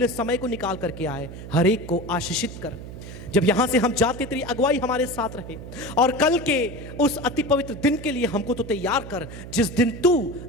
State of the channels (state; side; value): noise; right; hum, 12 dB below the sound